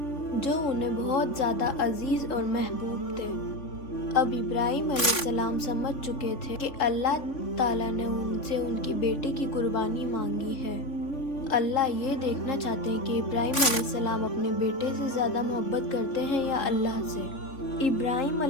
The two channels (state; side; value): late; right; 3.5 ms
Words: جو انہیں بہت زیادہ عزیز اور محبوب تھے۔ اب ابراہیم علیہ السلام سمجھ چکے تھے کہ اللہ تعالیٰ نے ان سے ان کی بیٹے کی قربانی مانگی ہے۔ اللہ یہ دیکھنا چاہتے ہیں کہ ابراہیم علیہ السلام اپنے بیٹے سے زیادہ محبت کرتے ہیں یا اللہ سے۔ ابراہیم